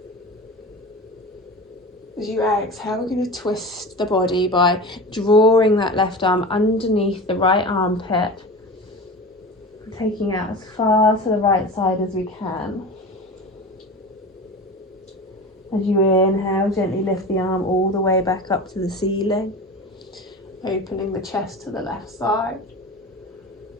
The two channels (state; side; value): normal; both; correlation 0.31